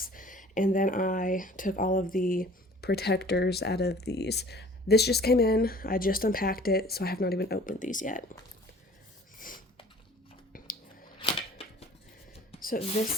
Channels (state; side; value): normal; both; correlation 0.49